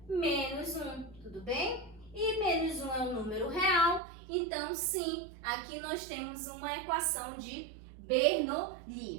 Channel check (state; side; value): drops out; left; at 4.0 s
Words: menos 1, tudo bem? E menos 1 é um número real, então sim, aqui nós temos uma equação de